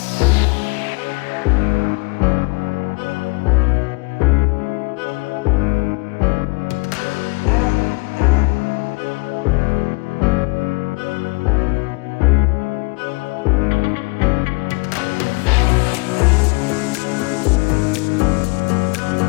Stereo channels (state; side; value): quieter; right; 28.6 dB